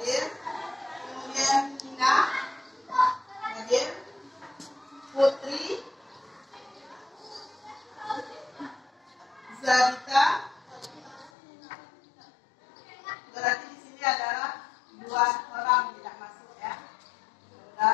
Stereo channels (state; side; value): drops out; right; at 11.3 s